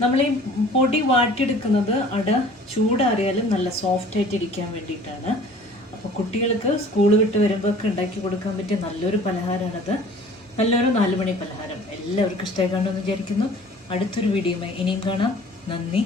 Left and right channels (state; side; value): normal; both; correlation 0.49